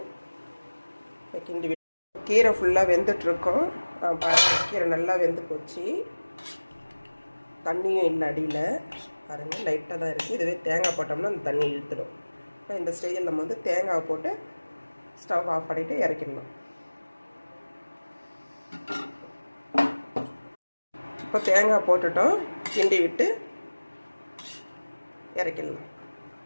இப்போ கிண்டி கீரை ஃபுல்லாக வெந்துட்டுருக்கோம். பாருங்கள், கீரை நல்லா வெந்து போச்சு. தண்ணியும் இல்லை அடியில். பாருங்கள், லைட்டாக தான் இருக்குது. இதுவே தேங்காய் போட்டோம்னா அந்த தண்ணி இழுத்துடும். இப்போ இந்த ஸ்டேஜில் நம்ம தேங்காவை போட்டு ஸ்டவ் ஆஃப் பண்ணிவிட்டு இறக்கிடணும். இப்போ தேங்காய் போட்டுட்டோம். கிண்டி விட்டு இறக்கிடலாம்.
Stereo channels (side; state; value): both; inverted; correlation -1.00